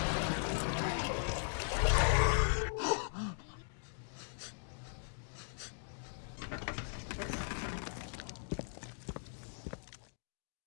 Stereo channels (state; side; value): silent; right; digital silence